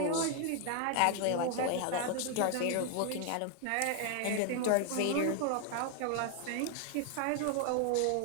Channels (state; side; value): different; both; correlation 0.00